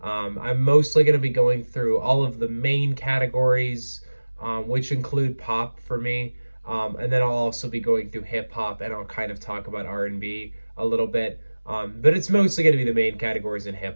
I'm mostly going to be going through all of the main categories, which include pop for me. And then I'll also be going through hip hop, and I'll kind of talk about R&B a little bit. But it's mostly going to be the main categories in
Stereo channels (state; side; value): inverted; both; correlation -1.00